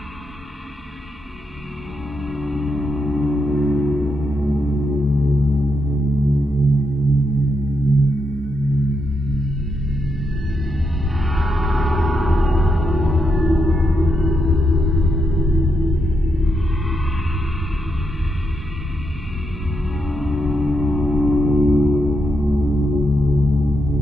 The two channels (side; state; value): both; normal; correlation 0.82